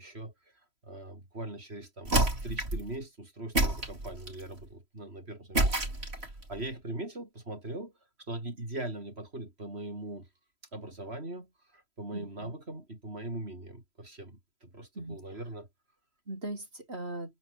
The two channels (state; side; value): late; left; 3.0 ms